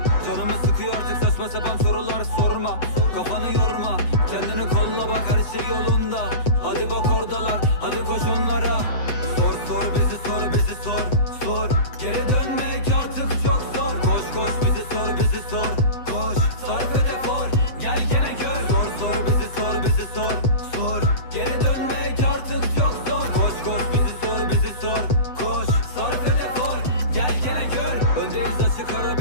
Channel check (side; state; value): right; late; 7.9 ms